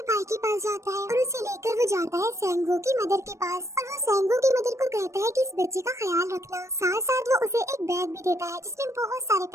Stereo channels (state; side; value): late; left; 0.14 ms